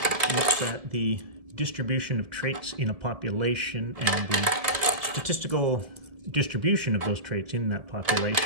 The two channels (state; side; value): late; left; 1.7 ms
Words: looks at the distribution of traits in a population and the statistical distribution of those traits in that